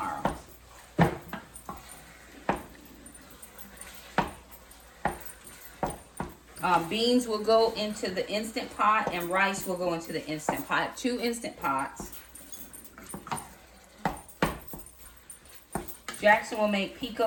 Beans will go into the Instant Pot and rice will go into the Instant Pot. 2 Instant Pots. Jackson will make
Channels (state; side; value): identical; both; correlation 1.00